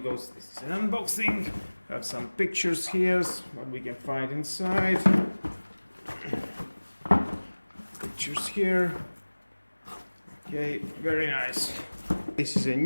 this is an unboxing. We have some pictures here, what we can find inside. Pictures here. Okay, very nice. This is a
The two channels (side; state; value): both; inverted; correlation -1.00